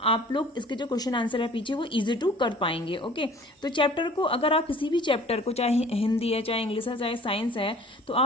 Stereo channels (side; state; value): both; normal; correlation 0.49